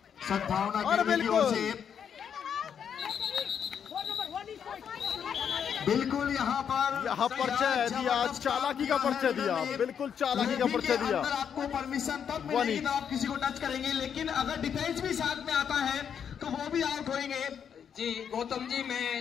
सद्भावना की ओर से। बिल्कुल यहाँ पर परिचय दिया, चालाकी का परिचय दिया, बिल्कुल चालाकी का परिचय दिया। आपको परमिशन तब मिलेगी तो आप किसी को टच करेंगे, लेकिन अगर डिफेंस भी साथ में आता है तो वो भी आउट होंगे। जी गौतम जी,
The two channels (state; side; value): quieter; right; 7.9 dB